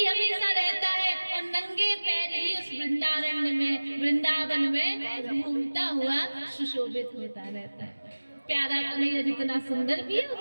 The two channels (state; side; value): inverted; both; correlation -1.00